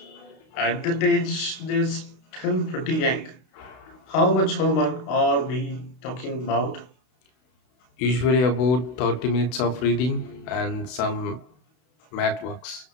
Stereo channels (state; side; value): late; right; 32 ms